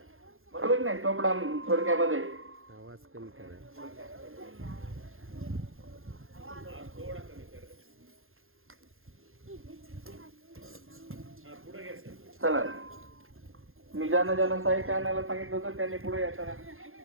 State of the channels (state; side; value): late; left; 0.60 ms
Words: बरोबर नाही. चोपडा थोडक्यामध्ये आवाज कमी करा. चला मी ज्यांना साहित्य आणायला सांगितलं होतं त्यांनी पुढे या.